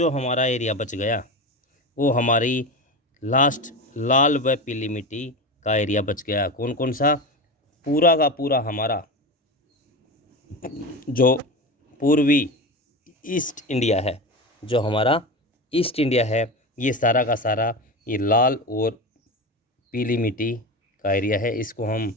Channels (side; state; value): both; normal; correlation 0.24